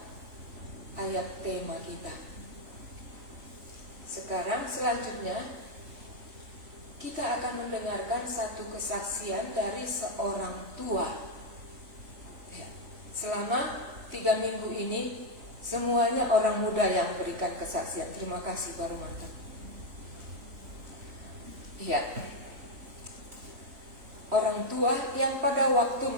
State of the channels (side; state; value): left; late; 3.4 ms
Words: ayat tema kita. Sekarang selanjutnya kita akan mendengarkan satu kesaksian dari seorang tua. Ya, selama 3 minggu ini semuanya orang muda yang berikan kesaksian. Terima kasih Pak Romanto. Ya, orang tua yang pada waktu